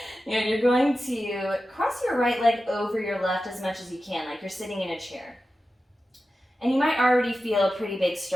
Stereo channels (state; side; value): normal; both; correlation 0.93